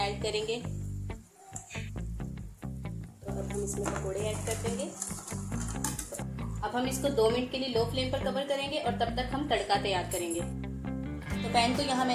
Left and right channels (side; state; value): both; identical; correlation 1.00